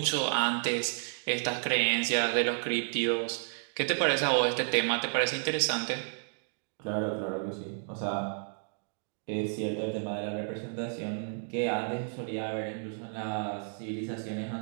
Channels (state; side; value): silent; left; digital silence